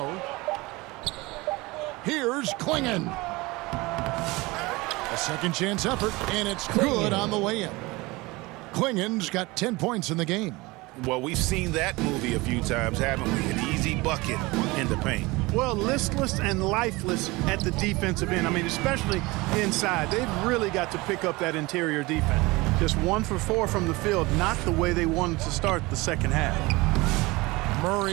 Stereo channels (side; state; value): left; quieter; 22.6 dB